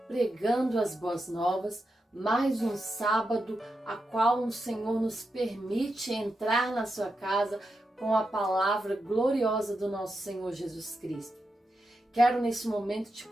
pregando as boas novas, mais um sábado a qual o Senhor nos permite entrar na sua casa com a palavra gloriosa do nosso Senhor Jesus Cristo. Quero nesse momento te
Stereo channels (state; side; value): normal; both; correlation 0.87